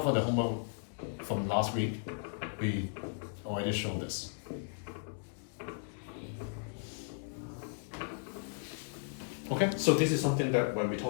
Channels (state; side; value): silent; right; digital silence